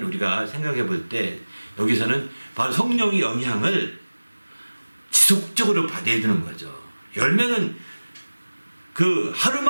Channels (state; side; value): inverted; both; correlation -1.00